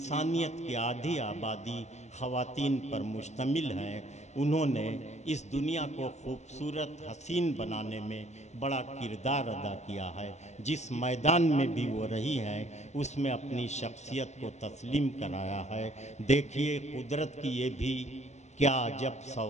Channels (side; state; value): right; late; 0.33 ms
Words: की आधी आबादी ख़वातीन पर मुश्तमिल है। उन्होंने इस दुनिया को खूबसूरत हसीन बनाने में बड़ा किरदार अदा किया है। जिस मैदान में भी वो रही हैं उसमें अपनी शख्सियत को तस्लीम कराया है। देखिए कुदरत की ये भी क्या अजब